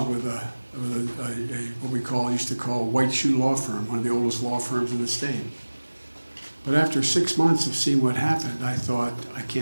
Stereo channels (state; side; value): inverted; both; correlation -1.00